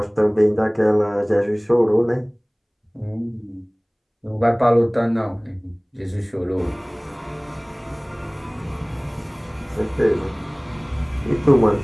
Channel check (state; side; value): identical; both; correlation 1.00